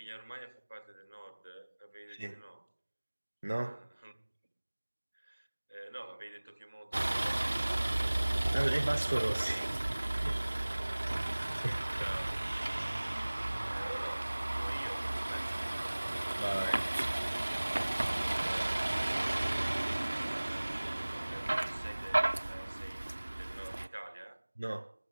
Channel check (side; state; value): both; inverted; correlation -1.00